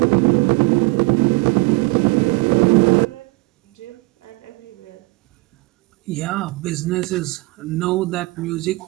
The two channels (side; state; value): left; quieter; 24.2 dB